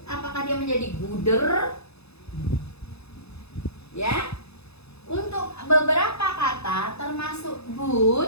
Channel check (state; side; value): late; right; 0.79 ms